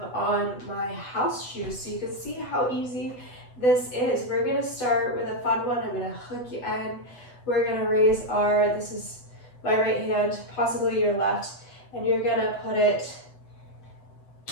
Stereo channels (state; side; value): late; right; 8.1 ms